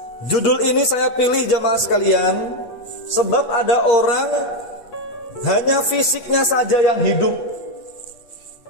Judul ini saya pilih jamaah sekalian sebab ada orang hanya fisiknya saja yang hidup.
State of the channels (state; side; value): late; right; 8.3 ms